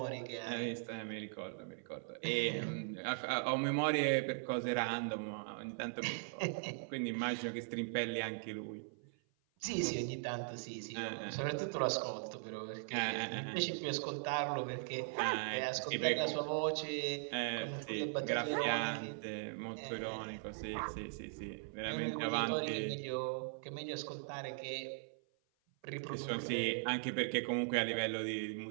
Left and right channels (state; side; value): silent; left; 51 dB below the other